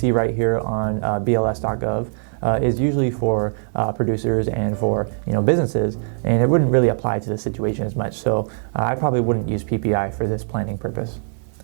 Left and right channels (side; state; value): left; silent; digital silence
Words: right here on BLS.gov, is usually for producers and for businesses, and it wouldn't really apply to the situation as much. So I probably wouldn't use PPI for this planning purpose.